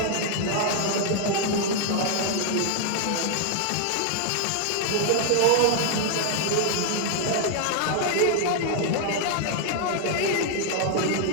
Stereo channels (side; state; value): both; different; correlation 0.00